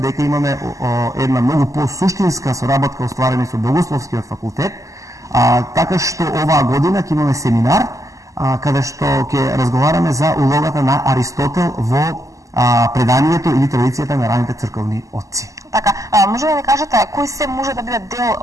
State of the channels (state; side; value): late; left; 0.16 ms